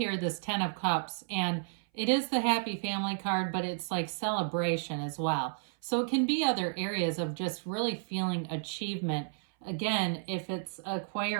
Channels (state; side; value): silent; left; 56 dB below the other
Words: this Ten of Cups, and it is the happy family card, but it's like celebration as well. So it can be other areas of just really feeling achievement. Again, if it's